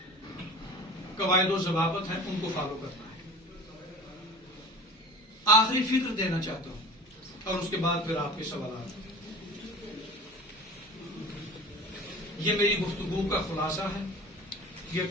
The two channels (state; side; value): normal; both; correlation 0.39